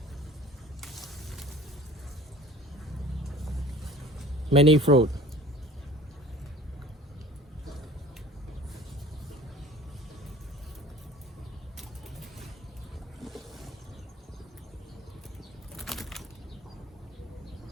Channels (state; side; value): normal; both; correlation 0.46